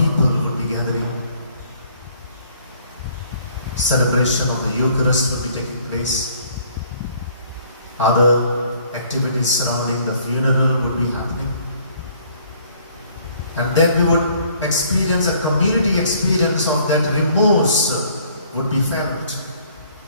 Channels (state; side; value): inverted; both; correlation -0.60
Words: would be gathering. Celebration of the Eucharist would be taking place. Other activities surrounding the funeral would be happening. And then we would experience a community experience of that remorse would be felt.